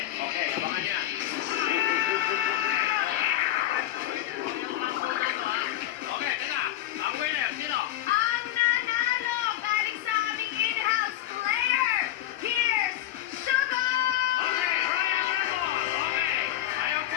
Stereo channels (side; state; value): right; quieter; 13.6 dB